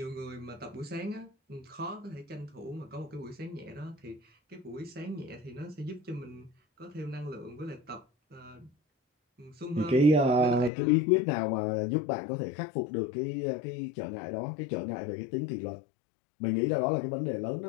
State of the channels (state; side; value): drops out; right; at 10.7 s